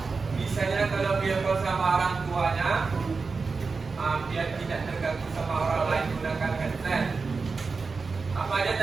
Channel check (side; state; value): left; quieter; 4.5 dB